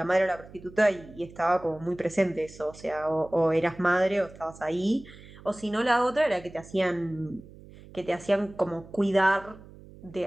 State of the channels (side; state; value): right; noise; hum, 20 dB below the sound